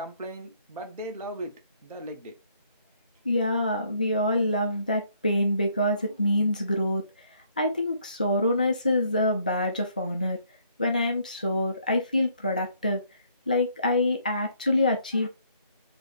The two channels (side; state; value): both; inverted; correlation -0.66